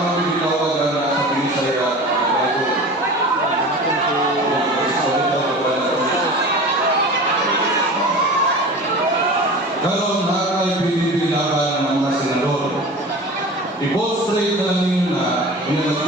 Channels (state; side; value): normal; both; correlation 0.36